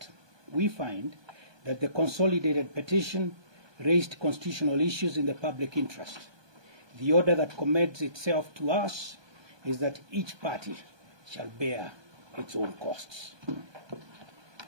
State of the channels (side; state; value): left; late; 1.2 ms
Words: We find that the consolidated petition raised constitutional issues in the public interest. The order that commends itself to us is that each party shall bear its own costs.